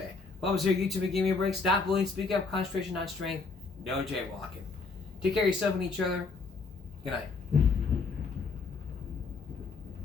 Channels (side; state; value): right; quieter; 4.3 dB